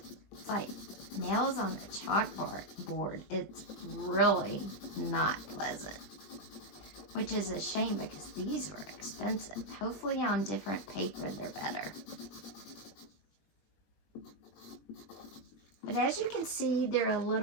It's like nails on a chalkboard. It's really not pleasant. Which is a shame because these were expensive. Hopefully on different paper they're better. But as you can see, they're a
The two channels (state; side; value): late; right; 20 ms